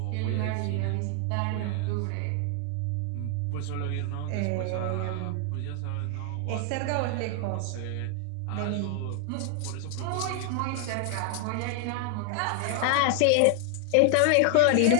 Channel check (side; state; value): both; different; correlation 0.00